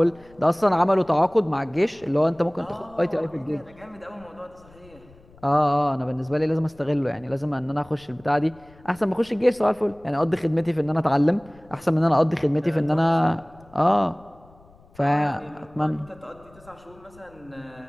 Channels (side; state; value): left; noise; rumble, 26 dB below the sound